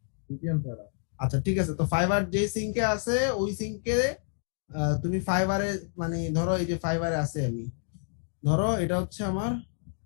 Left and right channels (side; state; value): right; silent; digital silence